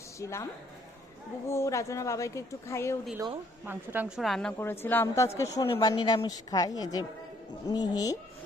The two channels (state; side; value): normal; both; correlation 0.65